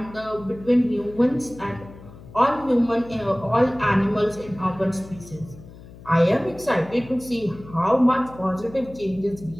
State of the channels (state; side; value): noise; left; hum, 18 dB below the sound